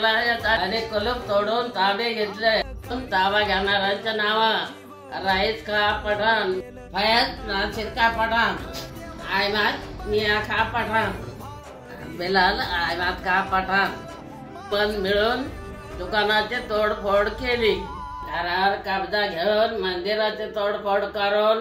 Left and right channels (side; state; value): both; identical; correlation 1.00